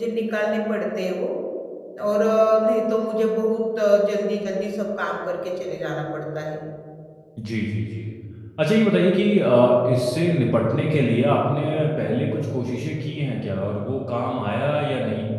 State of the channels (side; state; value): both; identical; correlation 1.00